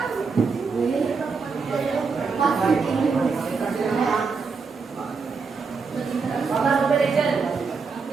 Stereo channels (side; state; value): left; quieter; 4.9 dB